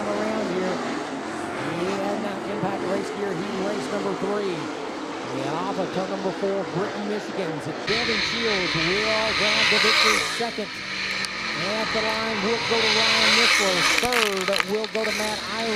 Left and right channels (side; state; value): both; identical; correlation 1.00